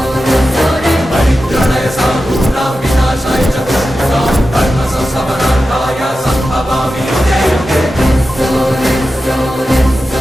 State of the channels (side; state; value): both; normal; correlation 0.92